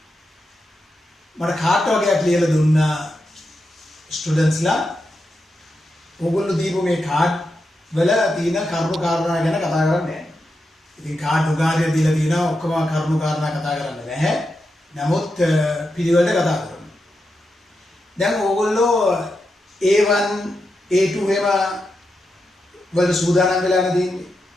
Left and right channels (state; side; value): normal; both; correlation 0.87